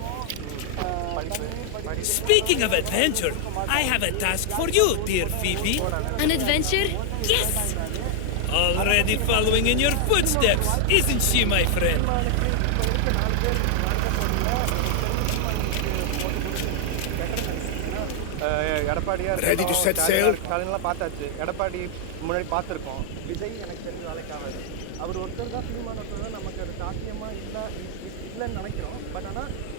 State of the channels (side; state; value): both; different; correlation 0.00